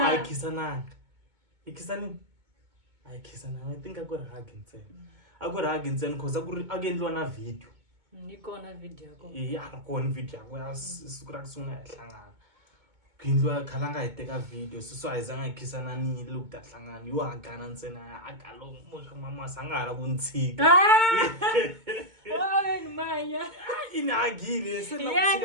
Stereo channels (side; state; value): left; late; 2.2 ms